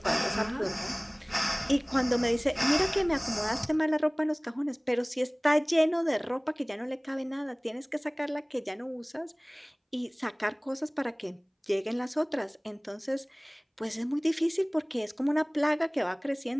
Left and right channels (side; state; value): both; identical; correlation 1.00